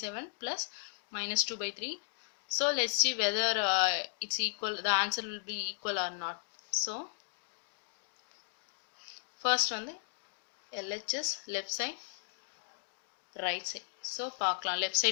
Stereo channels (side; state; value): right; silent; digital silence